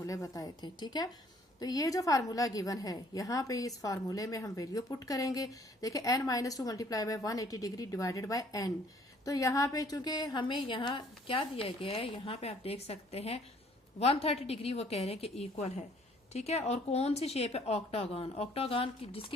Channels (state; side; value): normal; both; correlation 0.60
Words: बताए थे, ठीक है। तो ये जो फार्मूला गिवन है, यहाँ पे इस फार्मूले में हम वैल्यू पुट करेंगे। देखिए n-2 multiply by 180 degree divided by n। तो यहाँ पे चूंकि हमें यहाँ क्या दिया गया है, यहाँ पे आप देख सकते हैं 130 डिग्री वो कह रहे हैं कि इक्वल है, ठीक है। और कौन सी शेप है? ऑक्टागन। ऑक्टागन की